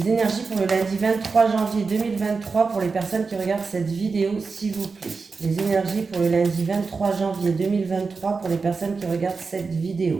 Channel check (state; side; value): quieter; left; 4.6 dB